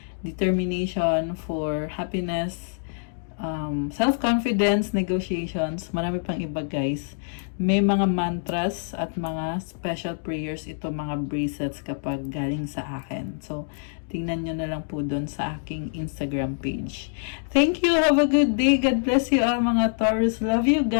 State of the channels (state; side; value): silent; right; digital silence